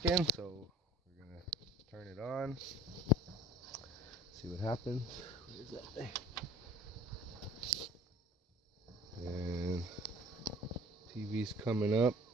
in, so we're gonna turn it on, see what happens. What is that thing? And TV's coming up.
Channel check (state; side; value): normal; both; correlation 0.48